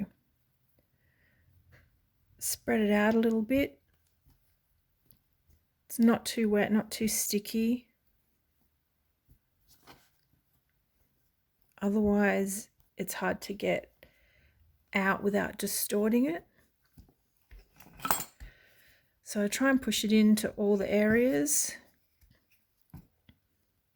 spread it out a little bit. It's not too wet, not too sticky. Otherwise, it's hard to get out without distorting it. So I try and push it into all the areas.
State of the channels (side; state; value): both; identical; correlation 1.00